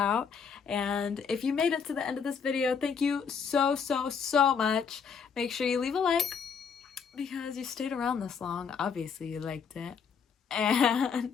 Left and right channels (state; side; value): quieter; right; 6.3 dB